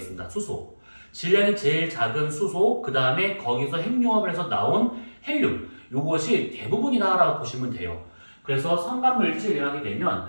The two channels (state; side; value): inverted; both; correlation -1.00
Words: 수소. 질량이 제일 작은 수소, 그 다음에 거기서 핵융합을 해서 나온 헬륨. 요것이 대부분이다라고 보시면 돼요. 그래서 성간물질이라고 하게 되면